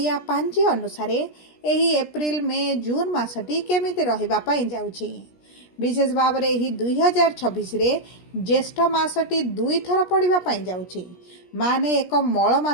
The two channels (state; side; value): late; right; 17 ms